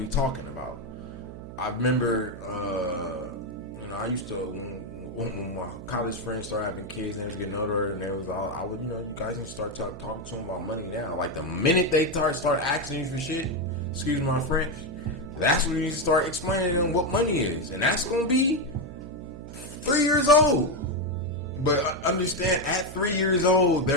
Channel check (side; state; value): right; noise; hum, 12 dB below the sound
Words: talking about? I remember, I used to, when my college friends started having kids and they was getting older, and they was all, you guys need to start talking to them about money now. Like, the minute they start asking you for shit, excuse my French, that's when you need to start explaining to them what money is, and that's gonna be 3 years old. But understand, at 3 years old,